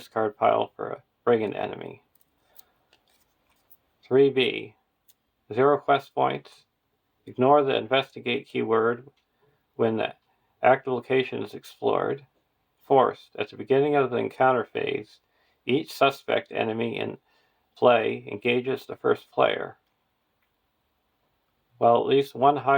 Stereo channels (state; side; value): identical; both; correlation 1.00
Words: pile for a brigand enemy. 3B. 0 quest points. Ignore the investigate keyword when the active location is explored. Forced. At the beginning of the encounter phase, each suspect enemy in play engages the first player. While at least one